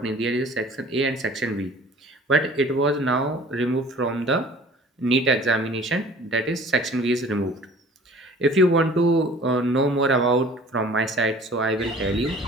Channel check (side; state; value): both; normal; correlation 0.48